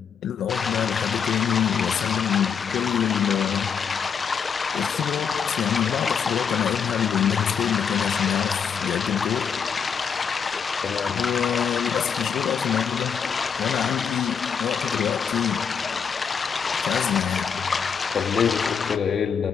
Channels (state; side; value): quieter; right; 6.8 dB